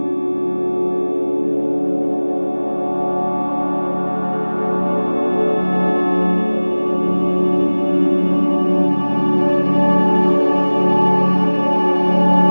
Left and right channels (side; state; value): both; inverted; correlation -1.00